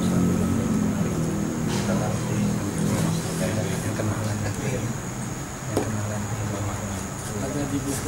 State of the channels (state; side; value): identical; both; correlation 1.00